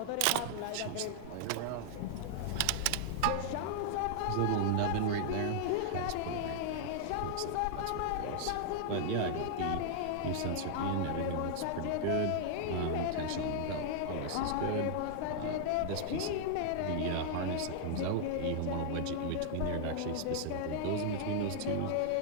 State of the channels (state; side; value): different; both; correlation -0.01